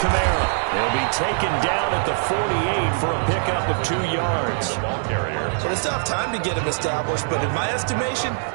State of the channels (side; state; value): left; silent; digital silence